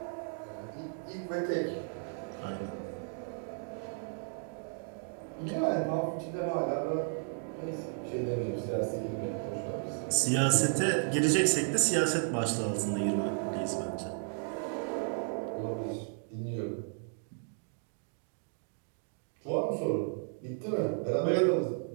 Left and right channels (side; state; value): left; silent; 55 dB below the other